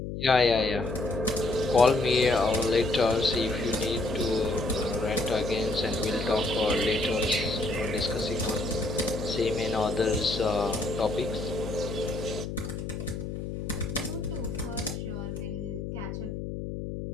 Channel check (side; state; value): left; noise; hum, 6 dB below the sound